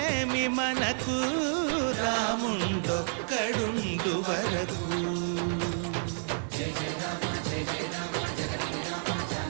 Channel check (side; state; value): left; silent; digital silence